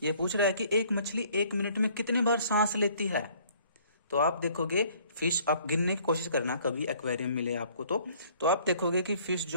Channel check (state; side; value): inverted; both; correlation -0.58